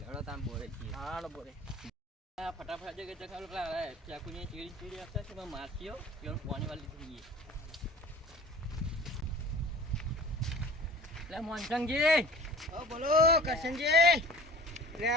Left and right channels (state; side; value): normal; both; correlation 0.44